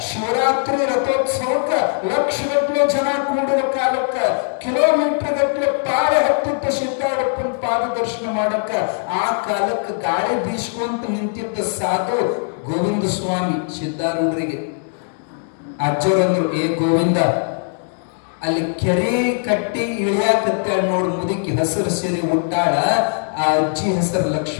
ಶಿವರಾತ್ರಿ ರಥೋತ್ಸವಕ್ಕ ಲಕ್ಷಗಟ್ಟಲೆ ಜನ ಕೂಡುವ ಕಾಲಕ್ಕ, ಕಿಲೋಮೀಟರ್ ಗಟ್ಟಲೆ ಪಾಳೆ ಹತ್ತಿದ್ದ ಸಿದ್ಧಾರೂಢಪ್ಪನ ಪಾದ ದರ್ಶನ ಮಾಡಕ್ಕ, ಆ ಕಾಲಕ್ಕೆ ಗಾಳಿ ಬೀಸ್ಕೊಂತ ನಿಂತಿದ್ದ ಸಾಧು ಗೋವಿಂದ ಸ್ವಾಮಿ ಸಿದ್ಧಾರೂಢರಿಗೆ. ಅಜ್ಜರಂದ್ರು, ಏ ಗೋವಿಂದ, ಅಲ್ಲಿ ಕೆರೆ ಕಟ್ಟಿ ಇಳಿಯಾಕತ್ತ ನೋಡು ಮುದುಕಿ, ಹಸಿರು ಸೀರೆ ಉಟ್ಟಾಳ. ಆ ಅಜ್ಜಿ ಹೆಸರು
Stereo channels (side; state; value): right; silent; 66 dB below the other